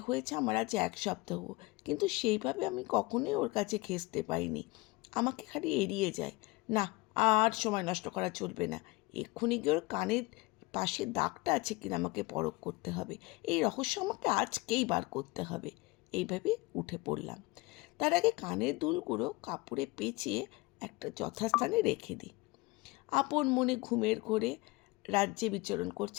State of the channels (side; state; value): right; quieter; 23.5 dB